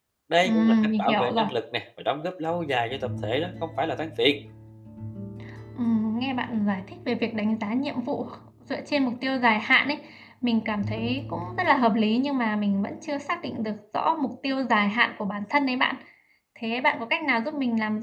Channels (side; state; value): both; identical; correlation 1.00